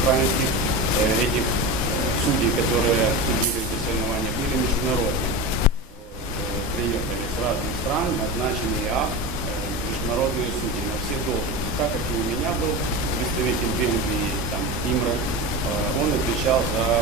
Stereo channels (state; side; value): normal; both; correlation 0.25